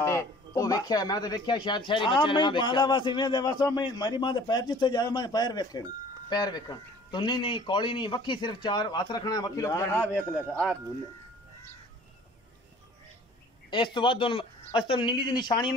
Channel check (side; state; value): both; normal; correlation 0.50